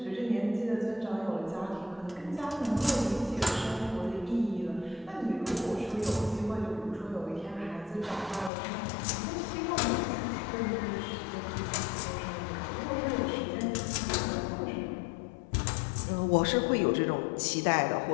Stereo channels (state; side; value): drops out; right; at 8.5 s